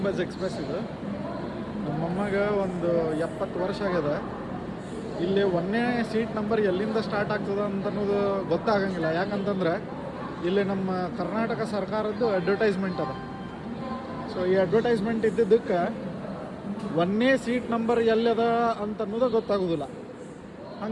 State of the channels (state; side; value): identical; both; correlation 1.00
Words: ಎಕ್ಸ್ಪ್ರೆಸ್ ಇದು. ನಮ್ಮಮ್ಮಗೆ ಒಂದು 70 ವರ್ಷ ಆಗ್ಯದ. ಇಲ್ಲಿ 1ನೇ ಸೀಟ್ ನಂಬರ್ ಎಲ್ಲಿಂದ ಸ್ಟಾರ್ಟ್ ಆಗ್ತದೆ ಅಂತ ಅನ್ನೋದು ಗೊತ್ತಾಗಂಗಿಲ್ಲ. ಯಾಕಂತಂದ್ರೆ ಇಲ್ಲಿ ನಮ್ಮ ಕರ್ನಾಟಕ ಸರ್ಕಾರದ್ದು ಅಡ್ವರ್ಟೈಸ್ಮೆಂಟ್ ಅದ. ಸೊ ಈ ಅಡ್ವರ್ಟೈಸ್ಮೆಂಟ್ ಇದ್ದಿದ್ದಕ್ಕೆ 1ನೇ ಸೀಟ್ ನಂಬರ್ ಎಲ್ಲದ ಅಂತ ಅನ್ನೋದು ಗೊತ್ತಾಗೋದಿಲ್ಲ.